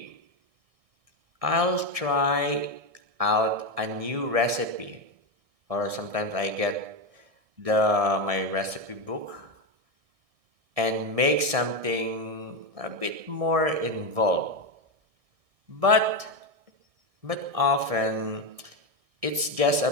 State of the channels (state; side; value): late; left; 1.6 ms